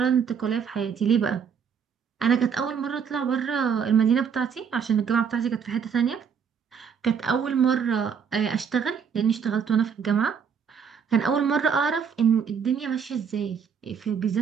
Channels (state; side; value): quieter; left; 6.9 dB